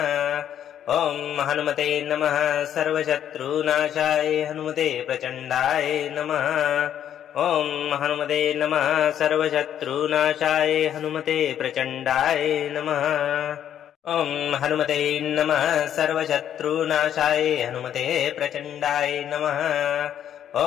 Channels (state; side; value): quieter; right; 10.0 dB